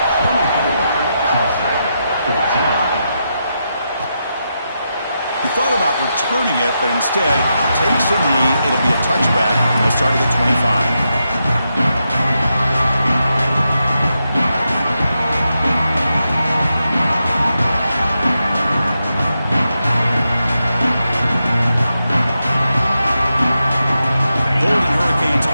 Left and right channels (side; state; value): both; inverted; correlation -0.86